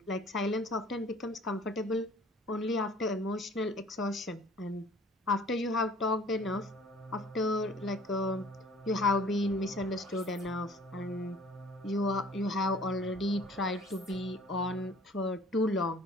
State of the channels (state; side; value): normal; both; correlation 0.51